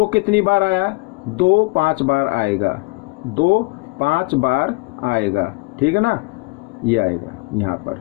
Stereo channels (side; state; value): right; quieter; 26.9 dB